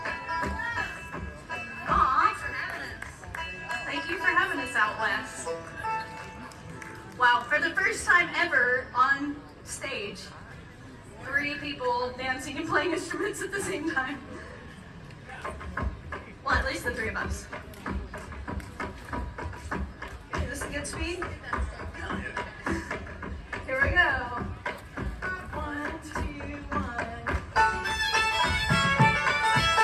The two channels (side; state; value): both; identical; correlation 1.00